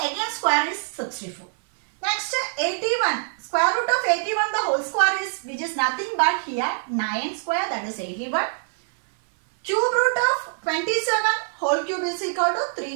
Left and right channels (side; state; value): left; silent; 58 dB below the other